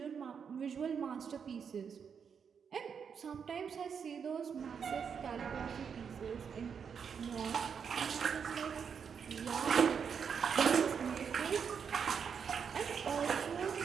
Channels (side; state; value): left; quieter; 6.8 dB